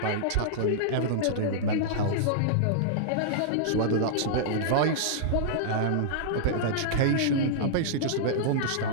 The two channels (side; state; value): both; different; correlation -0.02